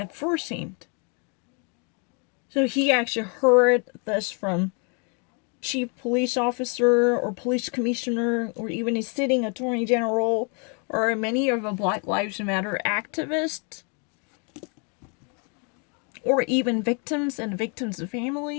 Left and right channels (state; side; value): quieter; right; 36.7 dB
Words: first hand. So he actually heard this from chief police officer or police commissioner or even a sitting attorney general or many of the Black Lives Matter activists or even victims and victims'